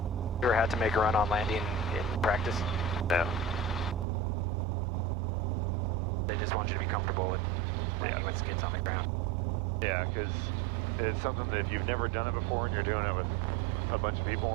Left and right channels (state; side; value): drops out; left; at 4.0 s